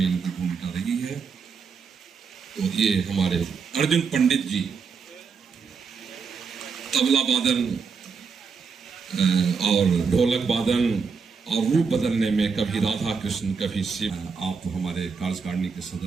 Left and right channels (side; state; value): left; quieter; 5.5 dB